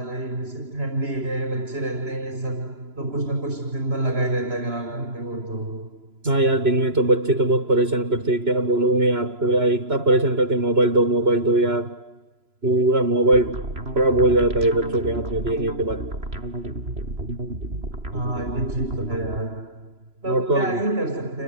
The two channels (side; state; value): left; late; 3.0 ms